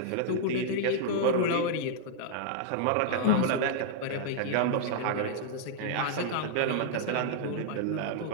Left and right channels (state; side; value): different; both; correlation -0.01